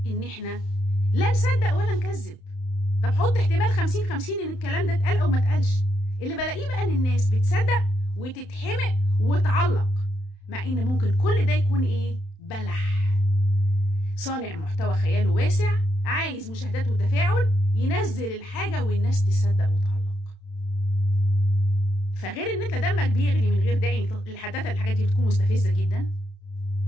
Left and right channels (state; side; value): late; right; 31 ms